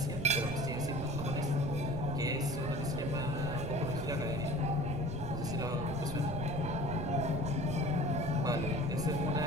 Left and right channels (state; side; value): noise; right; rumble, 7 dB below the sound